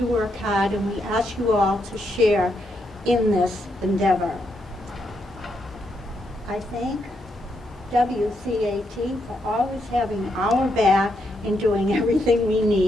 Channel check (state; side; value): normal; both; correlation 0.79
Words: work hard, and we ask you all to share in this endeavor. I thank WCAT for always having our back and doing everything we